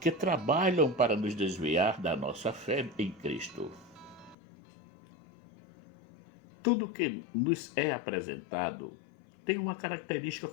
trabalham para nos desviar da nossa fé em Cristo. Tudo que nos é apresentado tem uma característica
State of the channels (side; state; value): right; drops out; at 4.4 s